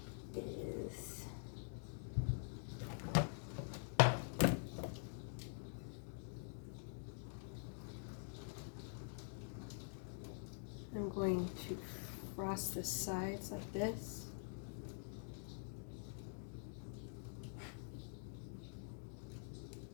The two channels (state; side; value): silent; right; digital silence